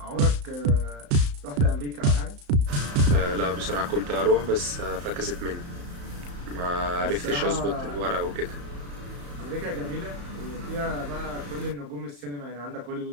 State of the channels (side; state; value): left; late; 35 ms